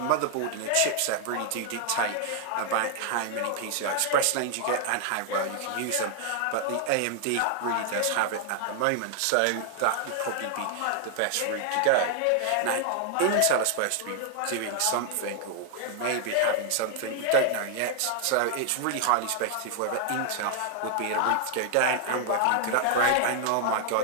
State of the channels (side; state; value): both; different; correlation 0.00